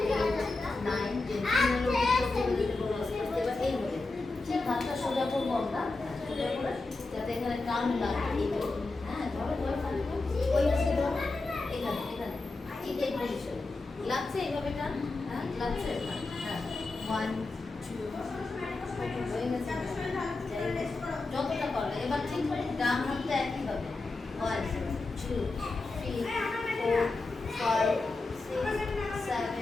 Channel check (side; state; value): right; quieter; 3.4 dB